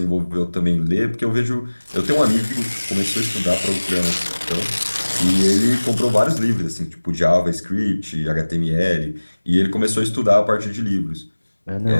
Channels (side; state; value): both; inverted; correlation -1.00